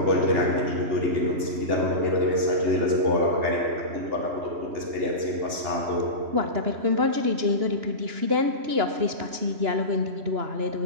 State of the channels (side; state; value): left; late; 2.9 ms